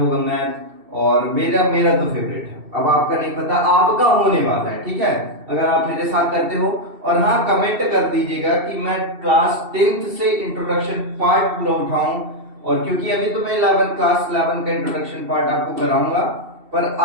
मैथ, और मेरा मेरा तो फेवरेट है। अब आपका नहीं पता, आपका होने वाला है, ठीक है, अगर आप मेरे साथ करते हो। और हाँ, कमेंट कर दीजिएगा कि मैं क्लास 10th से इंट्रोडक्शन पार्ट पूरा उठाऊं। और क्योंकि अभी तो मैं क्लास 11 का इंट्रोडक्शन पार्ट आपको कराऊंगा, पर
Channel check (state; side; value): late; left; 2.7 ms